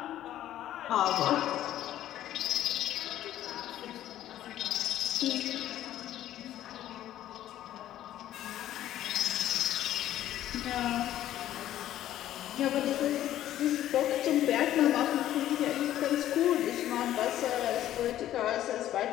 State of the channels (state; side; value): quieter; right; 12.6 dB